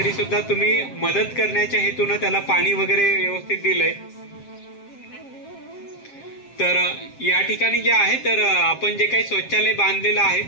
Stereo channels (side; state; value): right; late; 7.5 ms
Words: सुद्धा तुम्ही मदत करण्याच्या हेतून त्याला पाणी वगैरे व्यवस्थित दिलंय. तर या ठिकाणी जे आहे तर आपण जे काही शौचालय बांधलेलं आहे